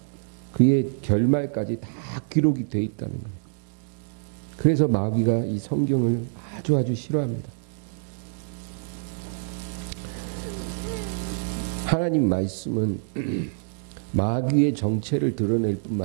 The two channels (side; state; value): left; silent; digital silence